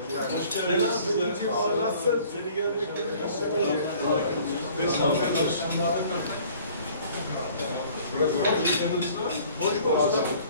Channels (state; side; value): inverted; both; correlation -0.53